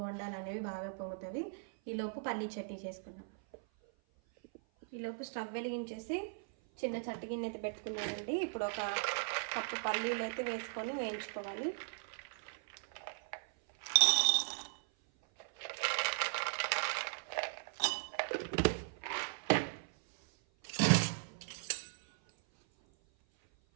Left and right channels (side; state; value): left; silent; 52 dB below the other